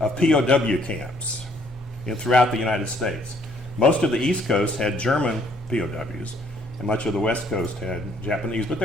POW camps throughout the United States. Most of the East Coast had German POWs, and much of the West Coast had Japanese, but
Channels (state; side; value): normal; both; correlation 0.64